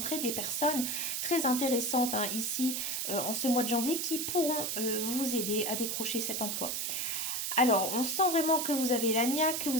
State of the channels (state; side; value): noise; right; hiss, 1 dB below the sound